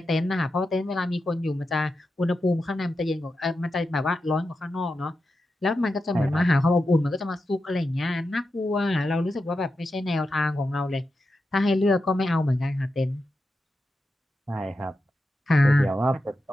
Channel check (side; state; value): both; normal; correlation 0.89